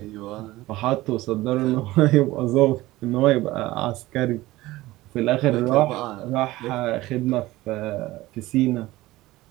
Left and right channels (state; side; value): quieter; left; 18.0 dB